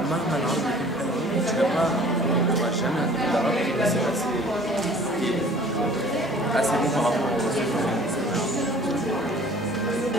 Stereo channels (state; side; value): normal; both; correlation 0.50